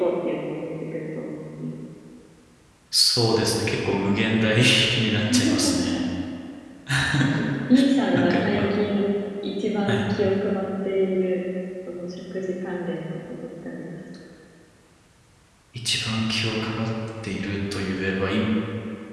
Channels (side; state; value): both; identical; correlation 1.00